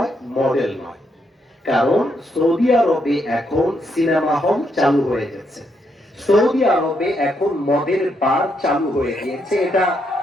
মডেল নয়। কারণ সৌদি আরবে এখন সিনেমা হল চালু হয়ে গেছে, সৌদি আরবে এখন মদের বার চালু হয়ে গিয়েছে। এটা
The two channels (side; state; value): both; normal; correlation 0.78